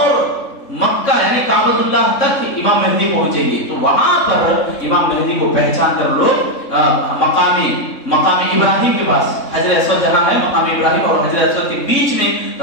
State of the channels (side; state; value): right; late; 3.6 ms